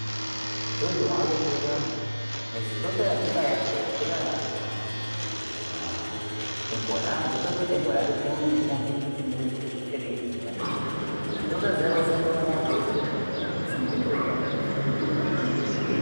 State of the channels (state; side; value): inverted; both; correlation -1.00